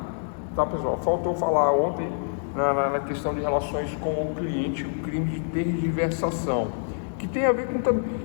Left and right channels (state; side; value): silent; right; digital silence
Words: Tá, pessoal? Faltou falar ontem na questão de relações com o cliente, o crime de tergiversação, que tem a ver com também,